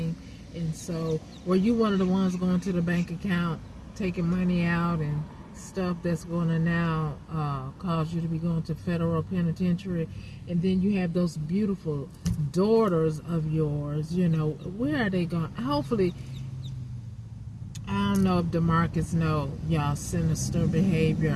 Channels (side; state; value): both; identical; correlation 1.00